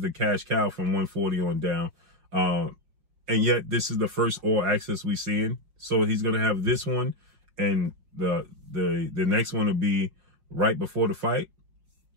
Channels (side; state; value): left; late; 5.4 ms